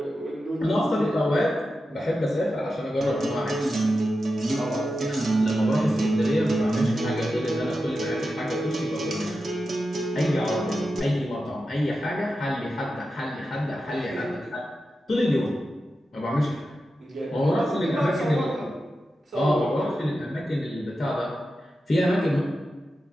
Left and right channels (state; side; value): normal; both; correlation 0.91